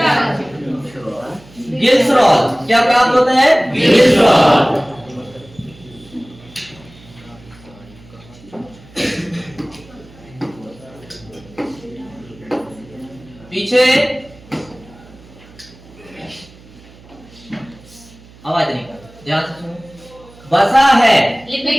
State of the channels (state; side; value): noise; right; hum, 23 dB below the sound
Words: ग्लिसरॉल। क्या प्राप्त होता है? ग्लिसरॉल। पीछे आवाज नहीं कर, ध्यान से सुनो। वसा है